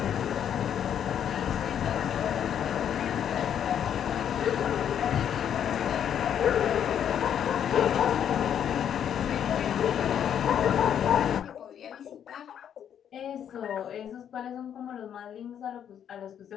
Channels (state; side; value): quieter; right; 9.2 dB